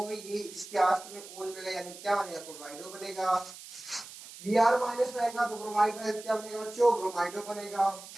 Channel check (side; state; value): right; noise; hiss, 15 dB below the sound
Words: ये इसके आस्ट में ओ लगेगा यानी क्या बनेगा, क्लोराइडो बनेगा। Br माइनस रहेगा तो ब्रोमाइड रहेगा, क्या बनेगा बच्चों, ब्रोमाइडो बनेगा।